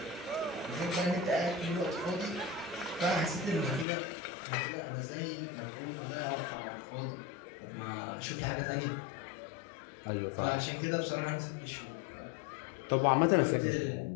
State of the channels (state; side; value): drops out; right; at 3.9 s